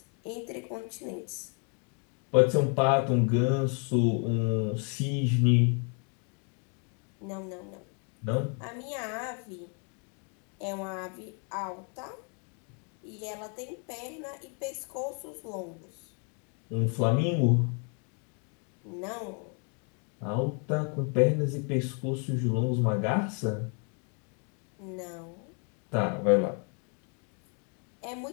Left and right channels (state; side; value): quieter; right; 39.3 dB